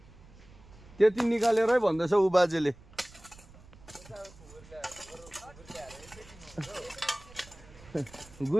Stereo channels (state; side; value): noise; right; rumble, 22 dB below the sound